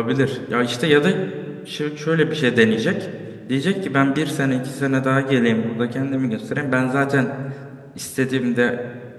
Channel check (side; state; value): both; identical; correlation 1.00